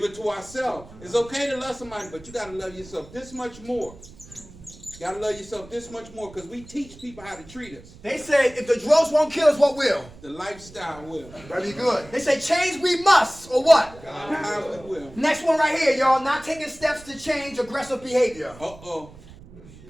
it to ourselves. It's okay to love somebody, but you got to love yourself this much more. You got to love yourself this much more because we teach people how to treat us. They say if the drugs won't kill us, what will? The lifestyle will. Very good. They say change we must, or what? How we will. Next one right here, y'all. Not taking steps to change aggressive behavior. Uh-oh.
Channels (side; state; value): right; noise; rumble, 20 dB below the sound